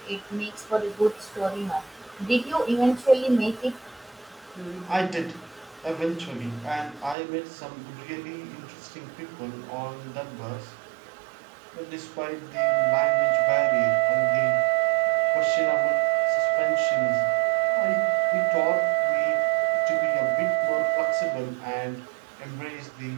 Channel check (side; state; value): left; drops out; at 7.2 s